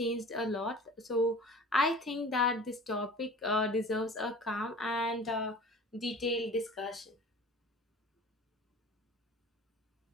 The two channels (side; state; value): both; normal; correlation 0.42